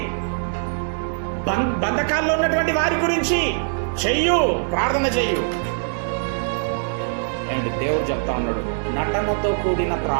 బంధకాల్లో ఉన్నటువంటి వారి గురించి చెయ్యు, ప్రార్థన చెయ్యు. ఏంటి దేవుడు చెప్తా ఉన్నాడు, నటనతో కూడిన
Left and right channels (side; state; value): left; silent; digital silence